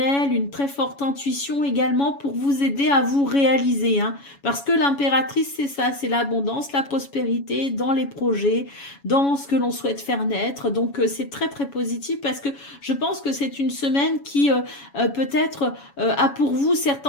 une très forte intuition également pour vous aider à vous réaliser, hein. Parce que l'impératrice, c'est ça, c'est l'abondance, la prospérité dans les projets, dans ce que l'on souhaite faire naître. Donc c'est très très positif parce que je pense que c'est une semaine qui peut-être a pour vous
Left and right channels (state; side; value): late; right; 7.1 ms